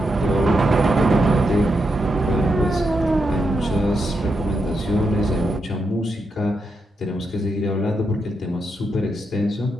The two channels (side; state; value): both; normal; correlation 0.83